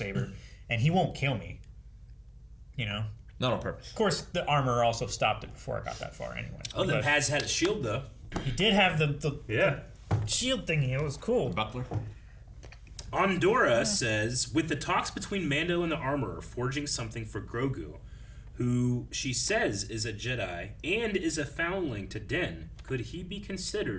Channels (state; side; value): identical; both; correlation 1.00